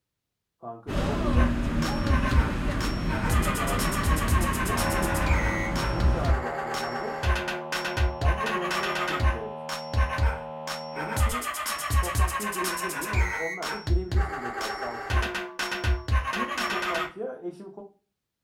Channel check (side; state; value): both; identical; correlation 1.00